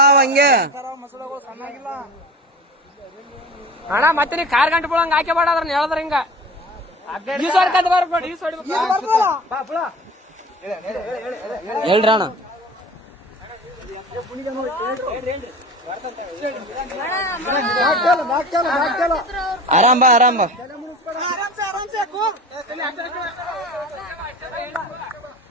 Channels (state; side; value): normal; both; correlation 0.37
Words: ಹಂಗೆ ಅಣ್ಣ. ಮತ್ತೆ ನೀ ಕಾರ್ ಗಂಟೆ ಬಿಡಂಗ ಹಾಕಿ ಬಾಡ್ರ ಹೇಳಿದ್ರ ಹಿಂಗ ಹೇಳ್ರಿ ಅಣ್ಣ. ಆರಾಮ್ ಬಾ, ಆರಾಮ್ ಬಾ.